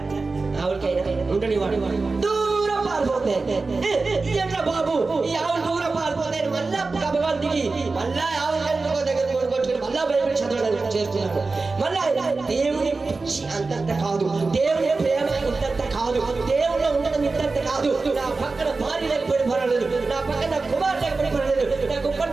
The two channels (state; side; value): quieter; left; 3.8 dB